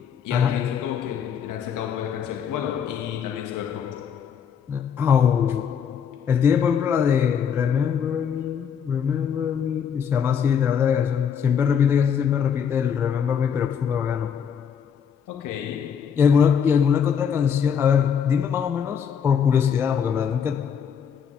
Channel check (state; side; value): quieter; right; 7.6 dB